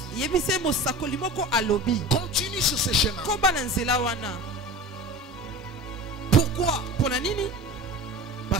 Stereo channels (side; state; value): both; normal; correlation 0.34